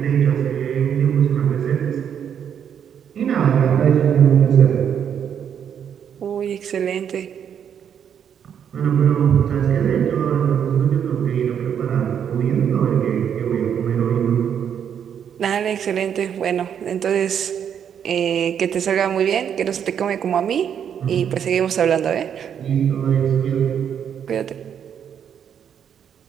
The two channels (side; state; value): left; quieter; 8.4 dB